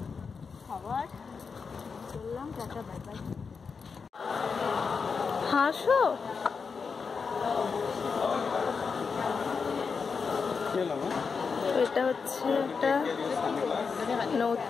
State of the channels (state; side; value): quieter; right; 5.4 dB